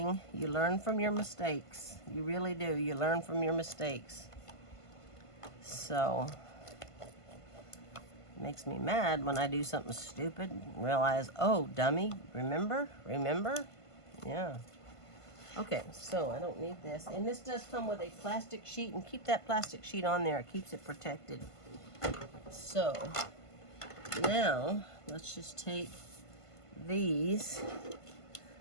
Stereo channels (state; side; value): late; right; 1.5 ms